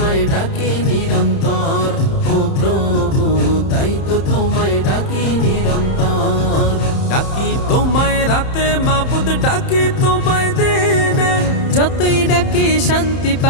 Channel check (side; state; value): right; late; 31 ms